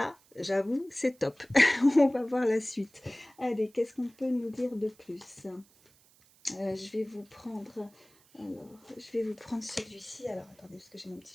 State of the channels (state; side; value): noise; right; hiss, 29 dB below the sound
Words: j'avoue, c'est top. On va voir la suite. Allez, qu'est-ce qu'on peut nous dire de plus? Je vais vous prendre... Alors, je vais vous prendre celui-ci. Alors, attendez, parce que j'ai mon